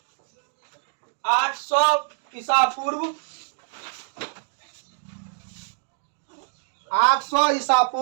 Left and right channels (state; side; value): silent; left; digital silence